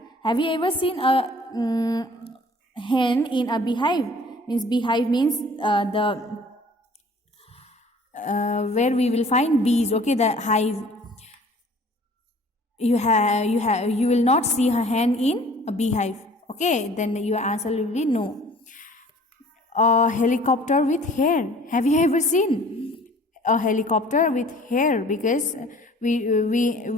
Have you ever seen a hen in a beehive? Means beehive means where we will find bees. Okay, the hive. You will not see a hen in a beehive. Okay, then your answer will be no. A helicopter with hair. Have you ever seen a helicopter with hair? Because we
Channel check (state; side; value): normal; both; correlation 0.51